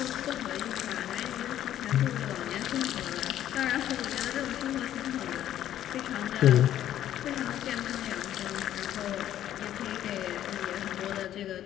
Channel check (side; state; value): right; quieter; 11.8 dB